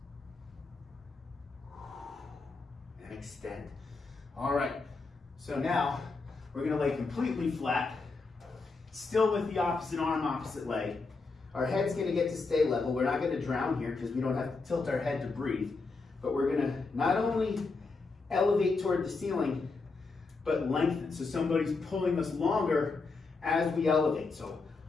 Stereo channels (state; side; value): quieter; right; 4.0 dB